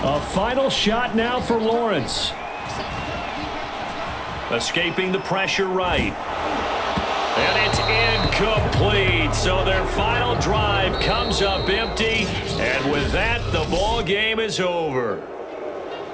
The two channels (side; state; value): both; identical; correlation 1.00